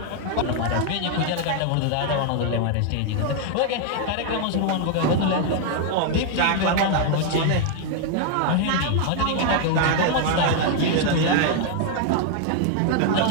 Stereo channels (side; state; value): both; different; correlation 0.00